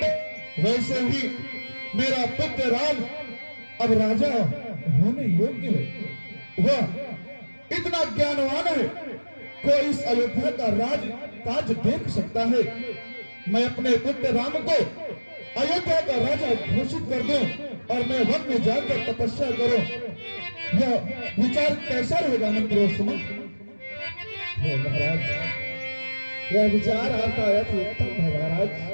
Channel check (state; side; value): inverted; both; correlation -1.00